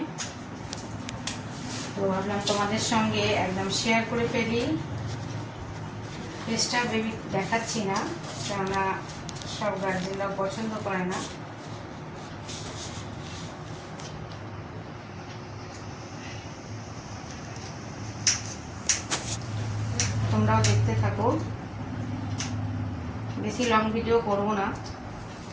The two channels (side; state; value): both; identical; correlation 1.00